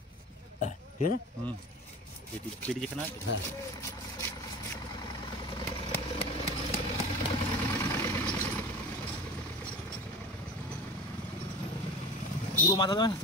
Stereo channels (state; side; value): normal; both; correlation 0.34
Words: ঠিক আছে, পেটি যেখানে আছে। হ্যাঁ পুরো মাথা দেবে না